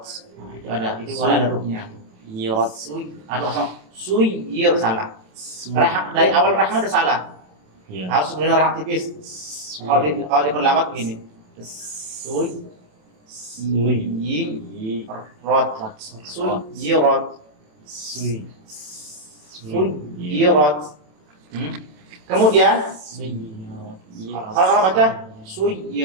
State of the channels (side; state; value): left; late; 27 ms